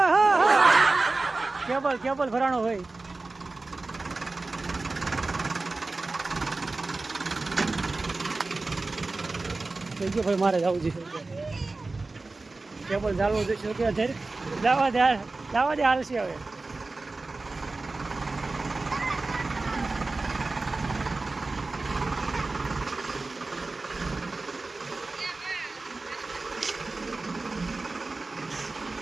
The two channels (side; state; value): left; quieter; 3.4 dB